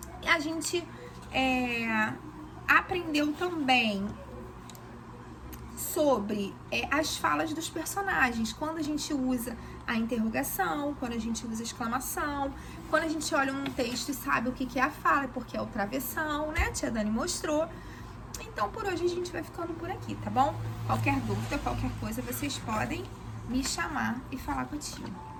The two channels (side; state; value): both; identical; correlation 1.00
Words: E a gente aprendeu também sobre as falas dos personagens, quando a gente usa a interrogação, quando a gente usa a exclamação, quando a gente olha um texto e sabe o que é a fala, porque é o travessão, né? A tia Dani mostrou. Então, por hoje a gente vai ficando por aqui, tá bom? Qualquer dúvida, qualquer coisa, vocês podem me chamar e falar contigo.